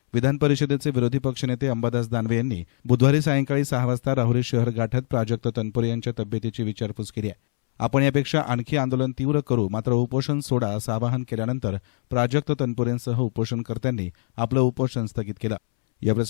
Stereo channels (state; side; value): silent; right; 63 dB below the other